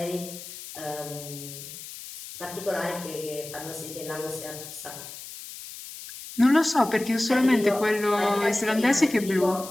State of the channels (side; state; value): left; noise; hiss, 13 dB below the sound